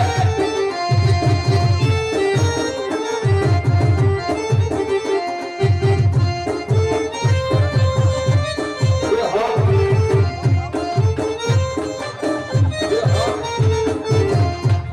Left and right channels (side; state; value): both; identical; correlation 1.00